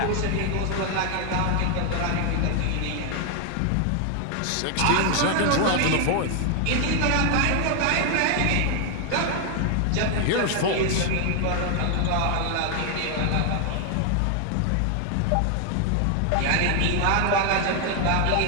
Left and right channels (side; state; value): both; different; correlation 0.00